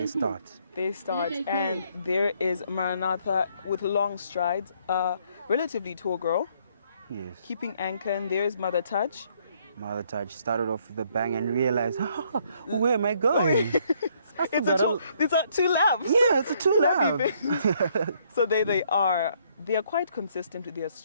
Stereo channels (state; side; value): inverted; both; correlation -0.67